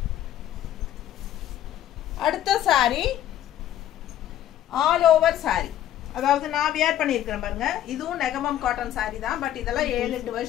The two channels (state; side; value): quieter; right; 12.0 dB